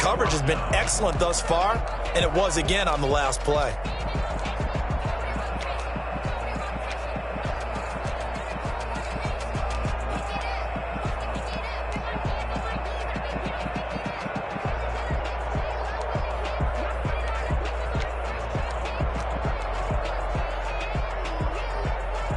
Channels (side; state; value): both; identical; correlation 1.00